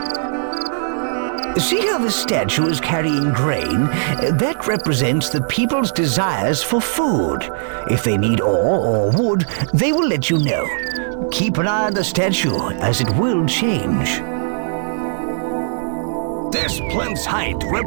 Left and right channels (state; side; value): silent; left; 67 dB below the other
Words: See how the statue is carrying grain? That represents the people's desires for food. If they need ore or wood, they will let you know. Keep an eye on the statue, as it will change. This plinth's height